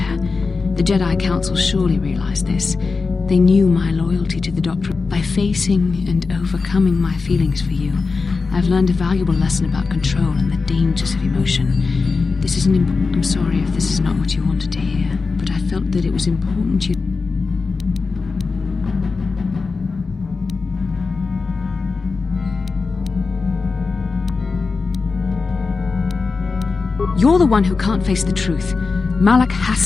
The Jedi Council surely realized this. They knew my loyalty to the Doctor. By facing and overcoming my feelings for you, I've learned a valuable lesson about control and the dangers of emotion. This isn't I'm sorry if this is not what you wanted to hear, but I felt that it was important you... You're the one who can't face the truth. Malak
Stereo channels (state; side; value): quieter; right; 4.4 dB